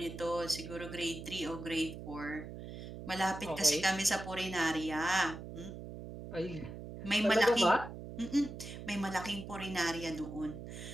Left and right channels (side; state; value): right; noise; hum, 10 dB below the sound